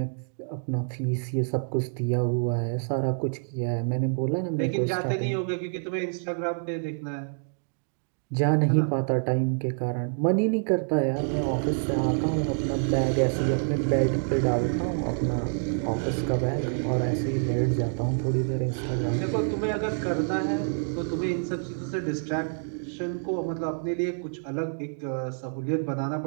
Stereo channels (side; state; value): left; silent; digital silence